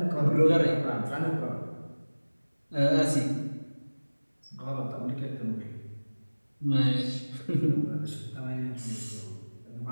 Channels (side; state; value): both; inverted; correlation -1.00